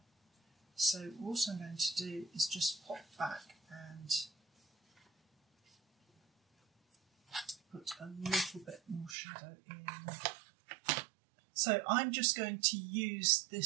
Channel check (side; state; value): left; drops out; at 9.2 s